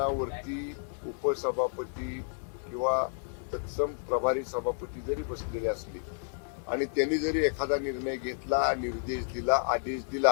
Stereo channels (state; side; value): silent; right; 57 dB below the other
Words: उपसभापती किंवा तत्सम प्रभारी सभापती जरी बसलेले असले आणि त्यांनी जरी एखादा निर्णय घेतला, निर्देश दिला, आदेश